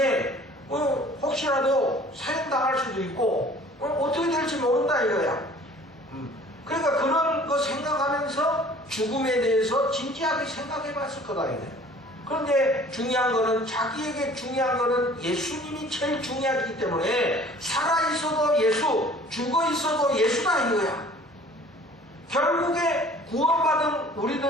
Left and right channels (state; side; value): normal; both; correlation 0.50